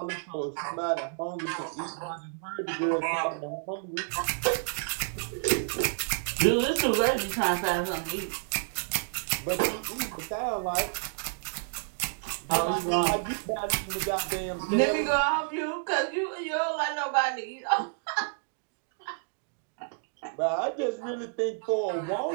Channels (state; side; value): silent; left; digital silence